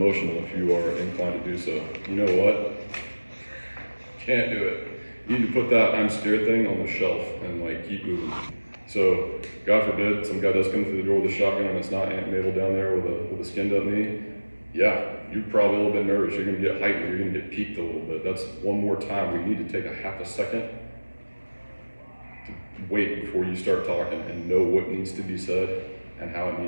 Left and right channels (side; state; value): both; inverted; correlation -1.00